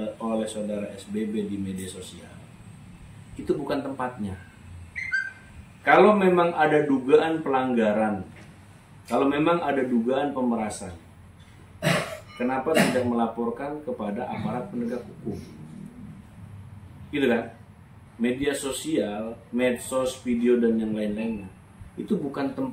oleh saudara SBB di media sosial, itu bukan tempatnya. Kalau memang ada dugaan pelanggaran, kalau memang ada dugaan pemerasan, kenapa tidak melaporkan kepada aparat penegak hukum? Gitu kan? Media sosial, medsos, video dan yang lain-lainnya, itu bukan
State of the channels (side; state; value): both; identical; correlation 1.00